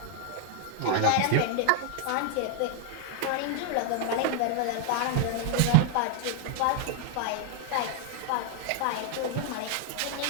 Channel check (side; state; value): both; different; correlation 0.00